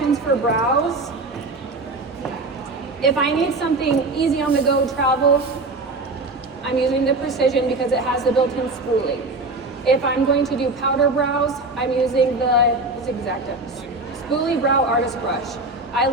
for brows, if I need something easy on the go travel, I'm using the Precision because it has the built-in spoolie. If I'm going to do powder brows, I'm using the Spoolie Brow Artist Brush. I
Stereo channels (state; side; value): quieter; left; 3.1 dB